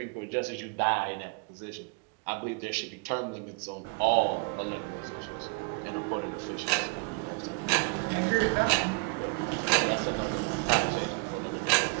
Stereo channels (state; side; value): quieter; left; 33.5 dB